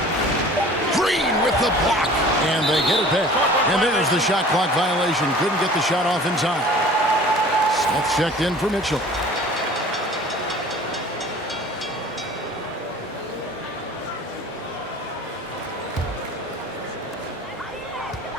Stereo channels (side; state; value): both; normal; correlation 0.46